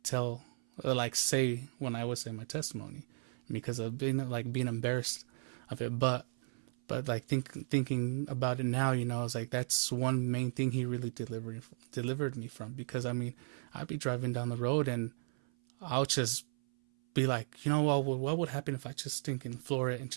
tell, like say when I would say my testimony, because of being embarrassed of it. But like thinking about it now, it's like that's one main thing he really delivered me from. Because I mean, I'd be driving down the road and I'll just be like, what would happen if I just floor it and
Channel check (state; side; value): silent; left; 54 dB below the other